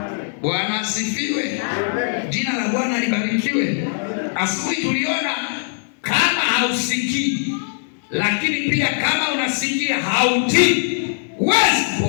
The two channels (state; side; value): silent; right; digital silence